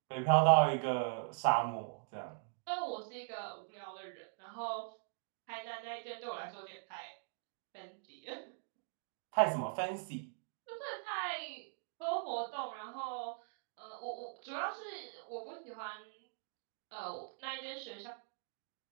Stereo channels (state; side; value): silent; left; digital silence